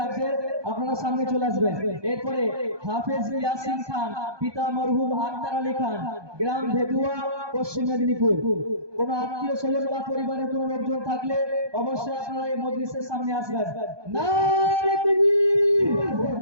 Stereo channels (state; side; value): late; left; 1.2 ms